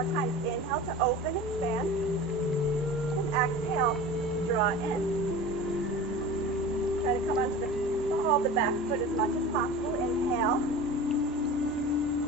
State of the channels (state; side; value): normal; both; correlation 0.35